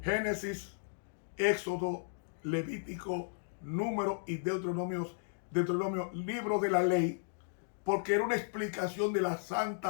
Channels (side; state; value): right; silent; digital silence